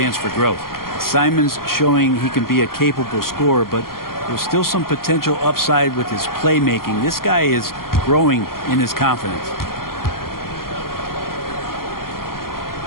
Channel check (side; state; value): right; late; 0.92 ms